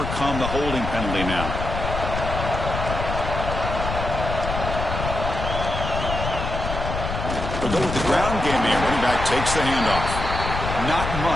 the holding penalty now. They'll go with the ground game here. Running back takes the handoff. Not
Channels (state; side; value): noise; left; rumble, 4 dB below the sound